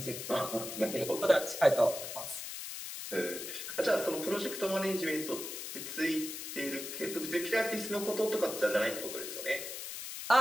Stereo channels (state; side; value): noise; left; hiss, 7 dB below the sound